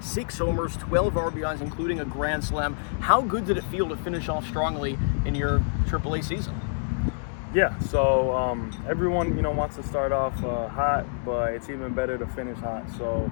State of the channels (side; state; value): right; silent; digital silence